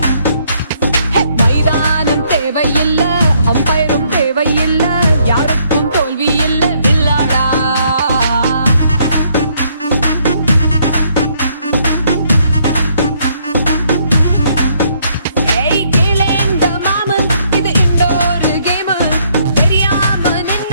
மைதானம் தேவையில்ல, அம்பயரும் தேவையில்ல, யாருக்கும் தோல்வி இல்ல வில்லாடா.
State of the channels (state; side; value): inverted; both; correlation -0.69